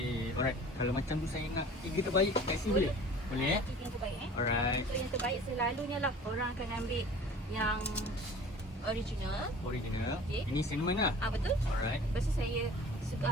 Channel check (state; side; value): normal; both; correlation 0.44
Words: Alright. Kalau macam tu saya nak tiga terbaik kat sini boleh? Boleh eh? Kita yang terbaik Alright. So yang terbaik selalunya lah orang akan ambil yang original. Original. Okey. Ini cinnamon lah. Betul. Alright. Lepas tu saya suka,